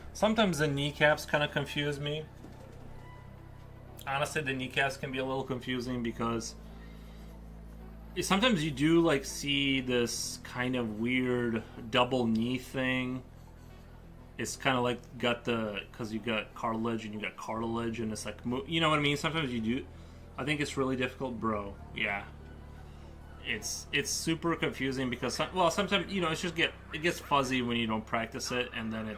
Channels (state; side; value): identical; both; correlation 1.00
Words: Sometimes the kneecaps kind of confuse me. Honestly, the kneecaps can be a little confusing because sometimes you do like see this kind of weird double knee thing. It's kind of like got the, because you got cartilage and you got cartilage and it's like, you know what I mean? Sometimes you do. I think it's really difficult, bro. Yeah. It's super confusing because well, sometimes, you know, it gets fuzzy when you don't practice it, and then